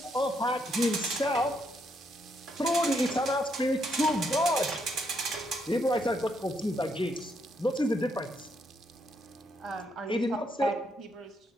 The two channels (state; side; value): normal; both; correlation 0.76